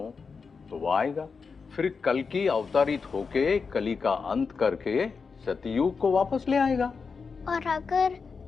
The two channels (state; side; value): quieter; right; 5.2 dB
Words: तो वो आएगा, फिर कल की अवतारित होके कली का अंत करके सतयुग को वापस ले आएगा। और अगर